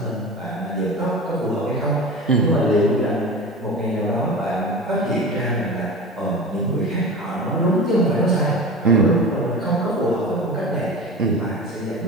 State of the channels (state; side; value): normal; both; correlation 0.32